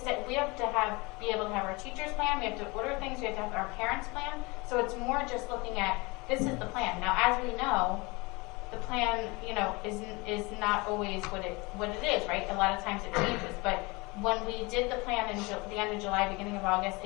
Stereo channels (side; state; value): right; quieter; 25.6 dB